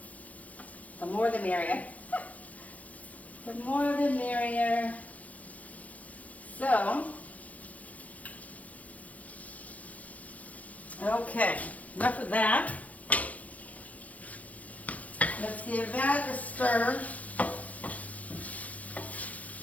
The more the merrier. The more the merrier. So, okay, enough of that. Let's give that a stir.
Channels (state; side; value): late; right; 0.071 ms